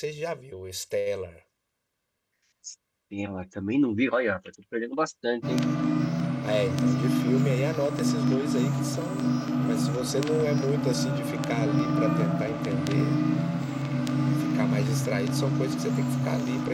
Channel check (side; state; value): both; identical; correlation 1.00